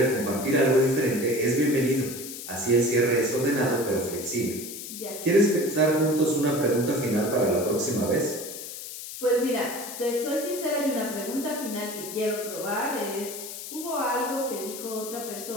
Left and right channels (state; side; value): noise; left; hiss, 10 dB below the sound